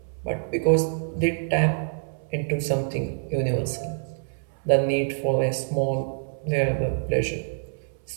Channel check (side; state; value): left; silent; 61 dB below the other